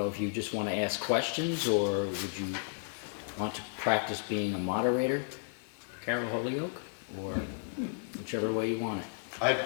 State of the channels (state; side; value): silent; right; digital silence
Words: if you just want to ask questions, or would you want to practice being a moderator, Carroll Holyoke, or whichever way you want it. I have a